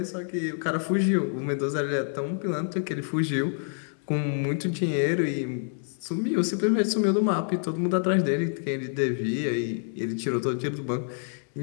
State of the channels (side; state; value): right; silent; digital silence